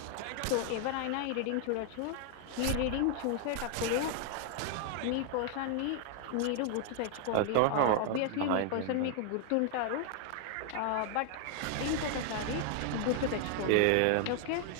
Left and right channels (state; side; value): different; both; correlation 0.00